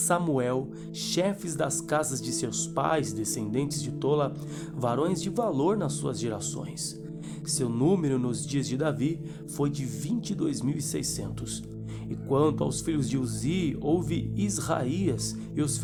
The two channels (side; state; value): right; noise; rumble, 25 dB below the sound